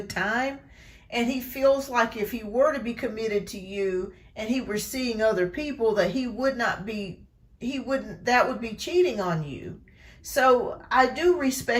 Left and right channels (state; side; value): identical; both; correlation 1.00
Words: time. And he feels like if he were to be committed to you and he were seeing other people, that that would be cheating on you. So I do